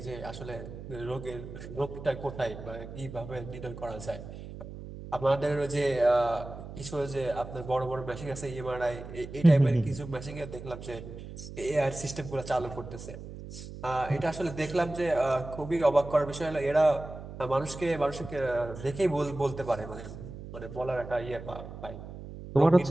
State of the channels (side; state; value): right; noise; hum, 12 dB below the sound